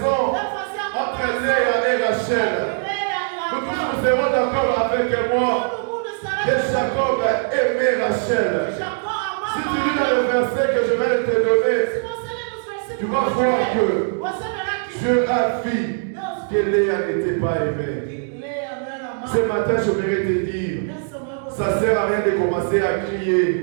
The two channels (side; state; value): left; silent; digital silence